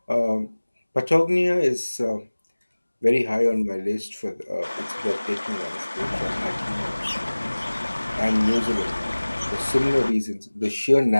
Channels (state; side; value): inverted; both; correlation -1.00